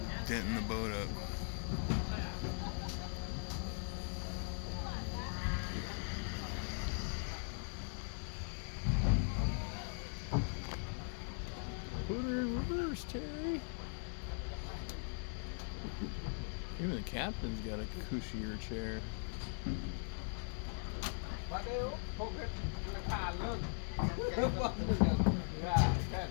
denting the boat up. Put her in reverse, Terry. Even the captain's got a cushier chair. Oh,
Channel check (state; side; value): silent; right; 51 dB below the other